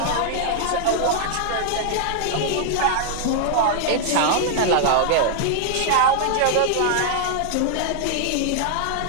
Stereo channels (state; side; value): different; both; correlation 0.00